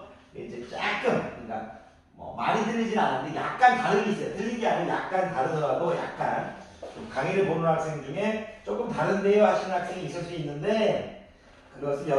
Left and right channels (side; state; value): both; identical; correlation 1.00